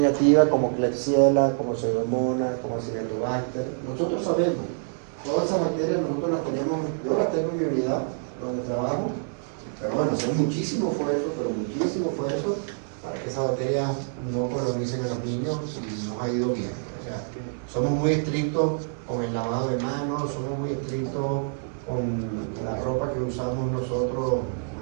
como Klebsiella, como Pseudomonas, como Acinetobacter. Nosotros sabemos, todas esas bacterias nosotros las tenemos, yo las tengo en mi unidad donde trabajo, pero bueno, hacer muchísimo esfuerzo para que esas bacterias no colonicen a los niños y nos ha ido bien. O sea, somos muy estrictos con el lavado de manos, somos muy estrictos con la ropa que usamos nosotros,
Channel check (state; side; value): silent; left; digital silence